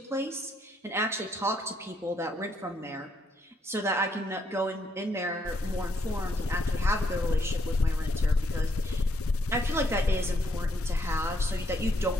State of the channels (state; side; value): normal; both; correlation 0.73